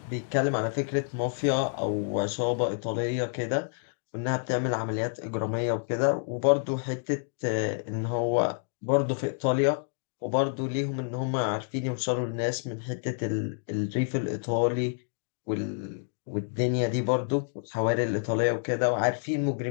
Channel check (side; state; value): right; silent; digital silence